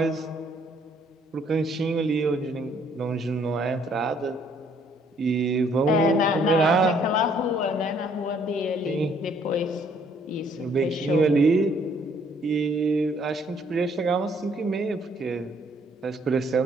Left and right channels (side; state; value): both; normal; correlation 0.64